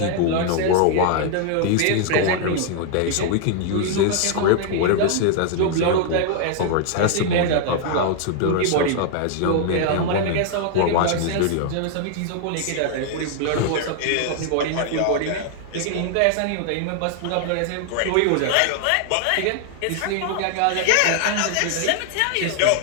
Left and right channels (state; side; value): different; both; correlation 0.00